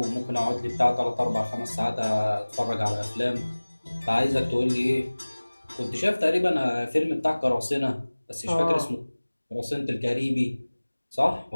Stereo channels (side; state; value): both; inverted; correlation -1.00